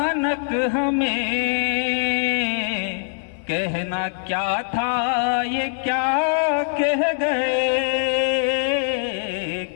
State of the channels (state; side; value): silent; right; digital silence